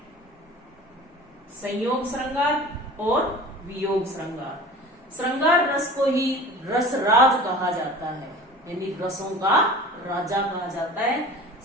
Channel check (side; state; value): both; normal; correlation 0.40